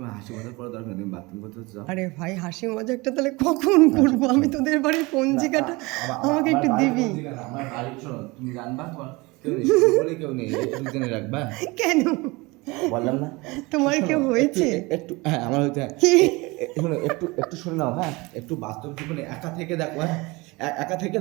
হাসি মজা করার দরকার নেই, তুমি বাথরুম করতে যাও। আরে ভাই হাসি মজাকটা তাহলে কখন করবো? আমি তোদের বাড়ির পঞ্জিকাটা আমাকে একটু দিবি। আমার বাড়ি শোনো, তুমি জানবা কেউ নেই, বলে কেউ নেই, দুজনে রাখবা। কেন বললাম না তোমার কেউ হয়েছে? একটু হ্যাঁ আমার হয়েছে। কি শোনো একটু একটু শুনে নাও, হ্যাঁ একটু বাস্তব জীবনে একা থেকে দেখো, হ্যাঁ একা থেকে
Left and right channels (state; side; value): quieter; left; 24.0 dB